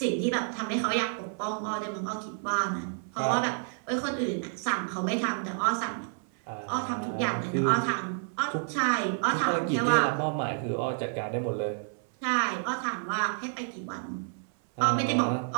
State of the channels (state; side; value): silent; left; 58 dB below the other